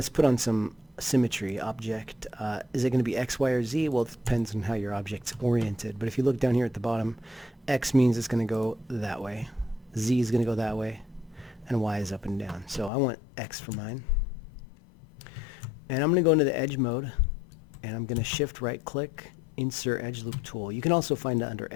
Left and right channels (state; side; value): drops out; right; at 12.9 s